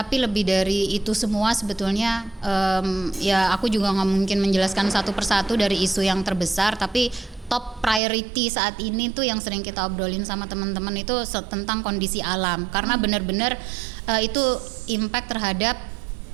lebih dari itu semua sebetulnya ya aku juga nggak mungkin menjelaskan satu persatu dari isu yang terbesar, tapi top priority saat ini tuh yang sering kita obrolin sama teman-teman itu tentang kondisi alam, karena benar-benar itu impact terhadap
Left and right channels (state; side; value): drops out; left; at 8.0 s